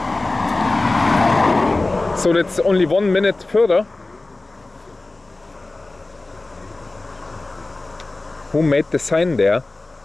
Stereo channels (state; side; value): quieter; right; 3.1 dB